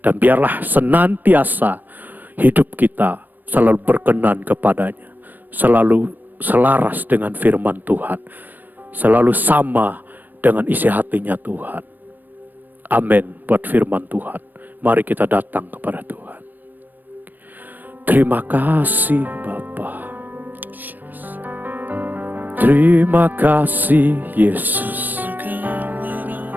biarlah senantiasa hidup kita selalu berkenan kepadanya. Selalu selaras dengan firman Tuhan. Selalu sama dengan isi hatinya Tuhan. Amin buat firman Tuhan. Mari kita datang kepada Tuhan. Terima kasih Bapa. Terima kasih Yesus.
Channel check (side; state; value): left; late; 0.089 ms